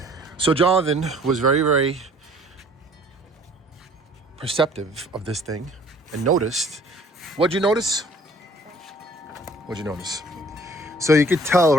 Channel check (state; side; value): normal; both; correlation 0.54